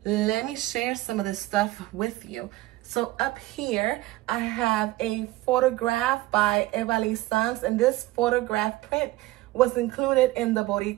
Let me share some of this stuff with you. So up here, I have a photograph by Evaliz, and this photograph print was included in the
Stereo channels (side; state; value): left; quieter; 18.2 dB